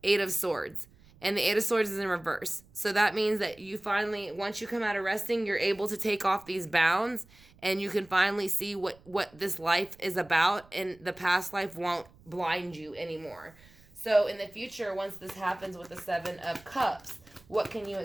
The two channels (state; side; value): noise; right; rumble, 27 dB below the sound